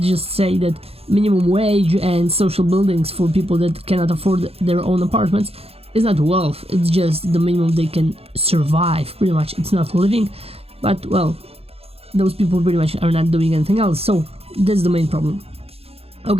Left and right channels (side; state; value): left; late; 0.29 ms